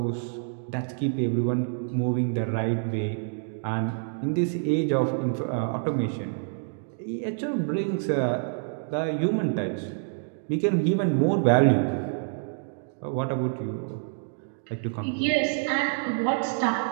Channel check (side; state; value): left; silent; digital silence